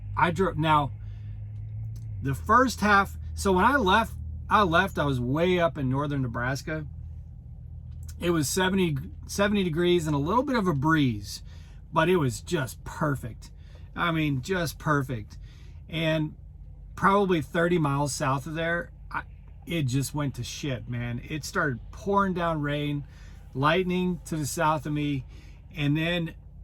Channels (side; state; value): both; identical; correlation 1.00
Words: drove, now the first half. So when I left, I was way up in northern Nebraska. It was 70 degrees and a little bit of a breeze, but it was just perfect. I mean, just perfect. And probably 30 miles south of there, it just went to shit, man. It started pouring down rain, lightning to the south of me. And then